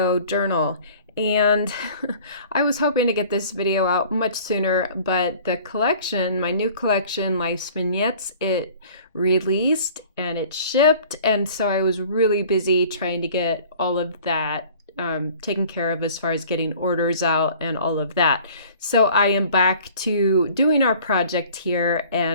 journal, and I was hoping to get this video out much sooner, but the collection, my new collection, Life's Vignettes, it released and it shipped, and so I was really busy trying to get all of that taken care of as far as getting orders out and all of that. So I am back to doing our project here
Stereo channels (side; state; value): both; inverted; correlation -0.49